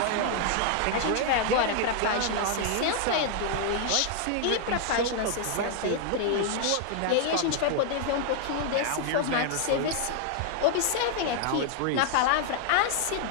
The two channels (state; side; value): different; both; correlation 0.00